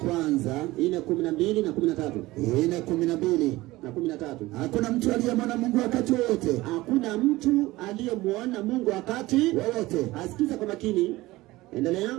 4:12 na 13. 4:12 na 13. Hakuna mtu aliyemwona Mungu wakati wote. Hakuna mtu aliyemwona Mungu wakati wote. Asikiza kwa makini. Endelea.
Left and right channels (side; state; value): left; quieter; 18.9 dB